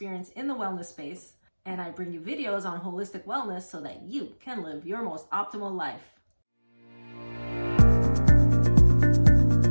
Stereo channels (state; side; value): inverted; both; correlation -1.00